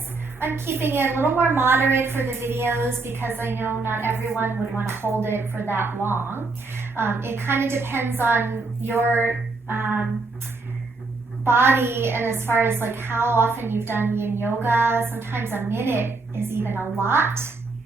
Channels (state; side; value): quieter; left; 3.7 dB